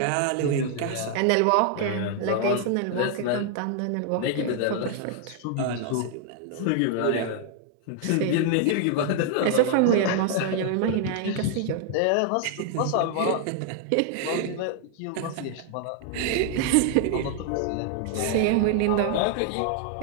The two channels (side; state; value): both; different; correlation 0.00